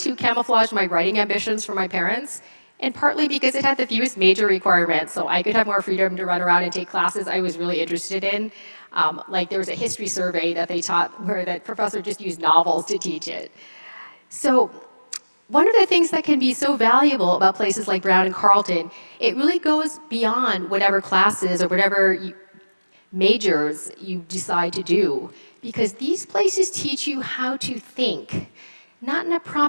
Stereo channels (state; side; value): inverted; both; correlation -1.00